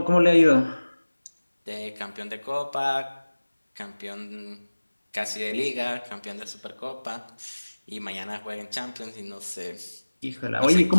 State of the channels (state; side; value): inverted; both; correlation -1.00